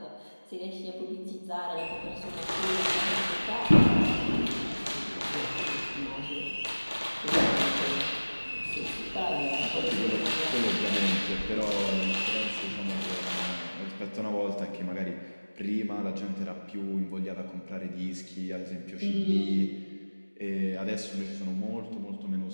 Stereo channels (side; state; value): both; inverted; correlation -1.00